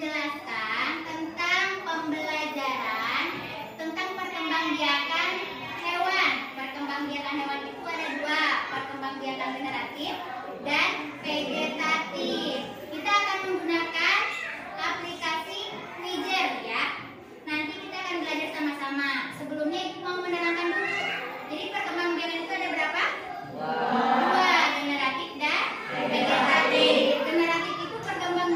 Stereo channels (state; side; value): identical; both; correlation 1.00